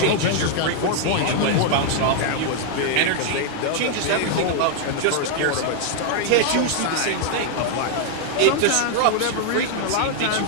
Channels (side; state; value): both; different; correlation 0.00